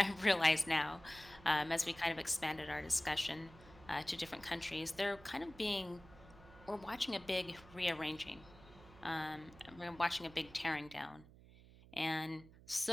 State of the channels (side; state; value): right; noise; hum, 21 dB below the sound